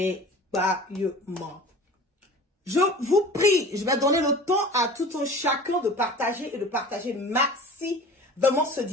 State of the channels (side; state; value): both; normal; correlation 0.40